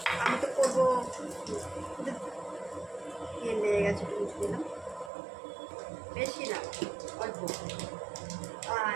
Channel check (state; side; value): drops out; left; at 5.1 s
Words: আমি তো করবো, তেল লেগে গেছে, একটু মুছে দিলাম, বেশি না অল্প।